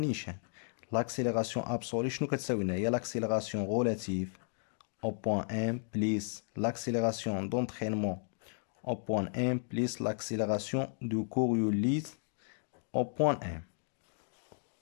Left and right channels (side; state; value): right; silent; digital silence